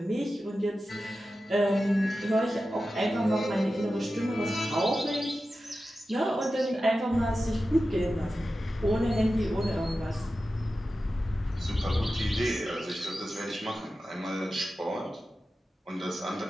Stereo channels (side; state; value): both; normal; correlation 0.93